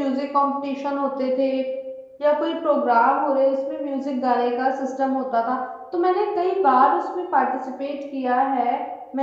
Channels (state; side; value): identical; both; correlation 1.00